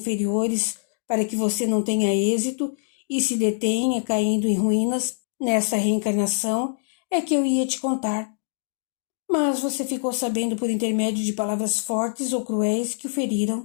para que você não tenha êxito e se detenha caindo em ruínas nessa reencarnação é que eu ia te contar. Mas você ficou sabendo por intermédio de palavras fortes ou cruéis que o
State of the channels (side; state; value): right; silent; digital silence